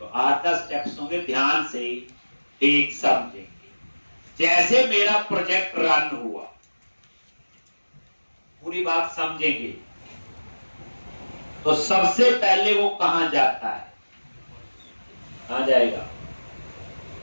8-10 स्टेप्स होंगे, ध्यान से एक समझेंगे। जैसे मेरा प्रोजेक्ट रन हुआ, पूरी बात समझेंगे, तो सबसे पहले वो कहां जाता है, कहां जाएगा,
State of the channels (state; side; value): inverted; both; correlation -1.00